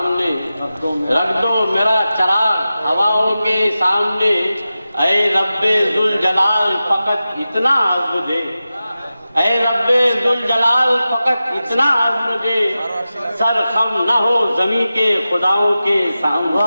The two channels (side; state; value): both; inverted; correlation -0.94